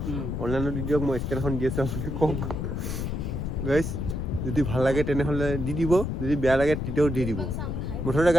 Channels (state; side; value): noise; left; rumble, 2 dB below the sound